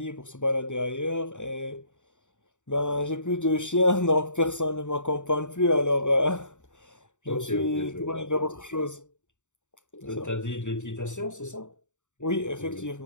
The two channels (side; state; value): right; late; 0.85 ms